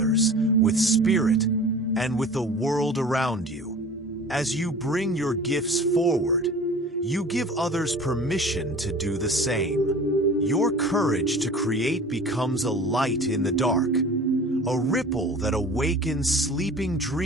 with spirit, and with the world around you. As you bring your gifts forward, you give others permission to do the same. Your courage to create becomes a light in the dark, a ripple that awakens sleeping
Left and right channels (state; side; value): normal; both; correlation 0.41